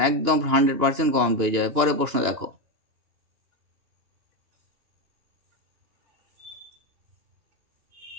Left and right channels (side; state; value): left; late; 2.9 ms